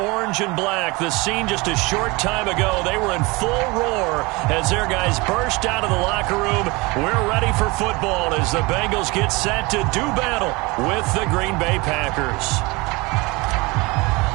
and black. The scene just a short time ago, they were in full roar as their guys burst out of the locker room. We're ready for football as the Bengals get set to do battle with the Green Bay Packers.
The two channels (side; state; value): left; quieter; 24.7 dB